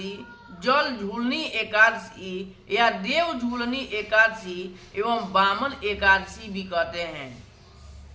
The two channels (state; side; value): identical; both; correlation 1.00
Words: जल झूलनी एकादशी या देव झूलनी एकादशी एवं वामन एकादशी भी कहते हैं।